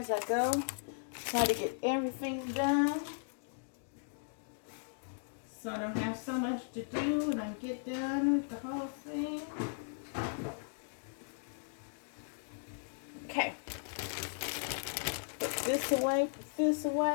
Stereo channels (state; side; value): silent; right; digital silence